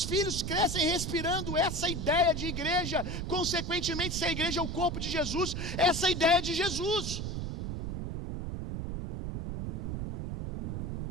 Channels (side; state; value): right; noise; rumble, 3 dB below the sound